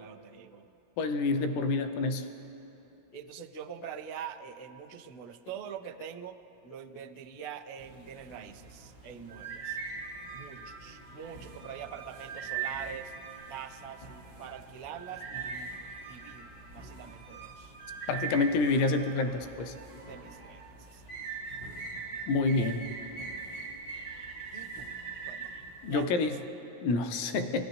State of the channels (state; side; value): late; right; 17 ms